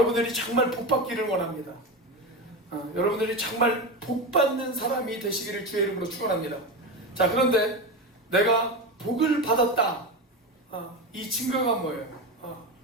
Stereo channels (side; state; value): both; normal; correlation 0.20